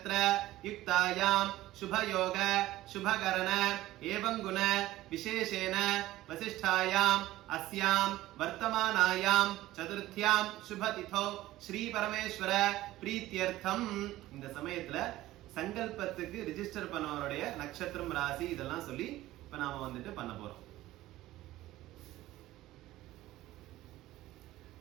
युक्तायां शुभयोग शुभकरण एवं गुण विशेषेण वसिष्ठायाम् अस्यां वर्तमानायां चतुर्थ्यां शुभतिथौ श्री परमेश्वर प्रीत्यर्थम இந்த சமயத்துல சங்கல்பத்துக்கு ரெஜிஸ்டர் பண்ணவருடைய நட்சத்திரம் ராசி இதெல்லாம் சொல்லி இப்ப நாம வந்துட்டு பண்ண போறோம்.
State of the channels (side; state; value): left; quieter; 16.0 dB